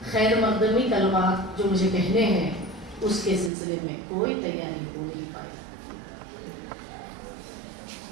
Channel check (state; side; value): drops out; left; at 3.5 s